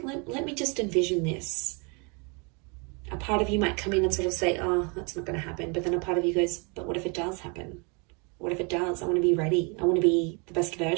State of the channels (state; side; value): quieter; left; 32.6 dB